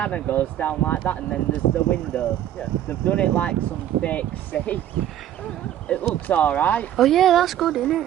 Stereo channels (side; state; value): left; quieter; 11.5 dB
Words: goes down like that and then there's the window. Yeah. They've done it like some fake safe. It looks alright. Oh yeah, that's good, isn't